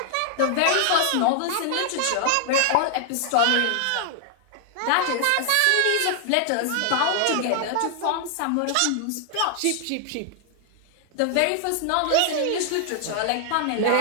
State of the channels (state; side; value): different; both; correlation 0.00